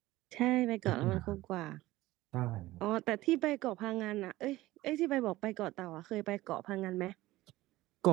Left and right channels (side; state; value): left; quieter; 17.5 dB